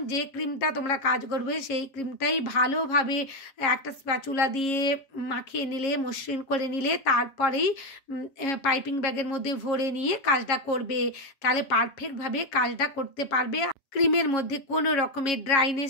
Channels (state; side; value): late; right; 7.4 ms